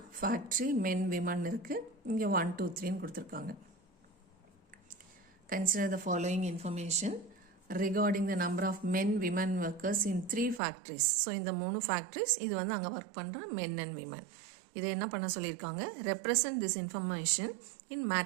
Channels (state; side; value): drops out; left; at 10.6 s